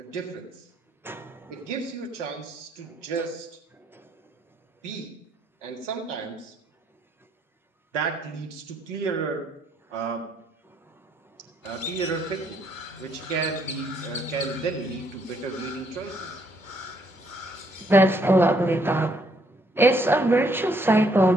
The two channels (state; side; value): normal; both; correlation 0.70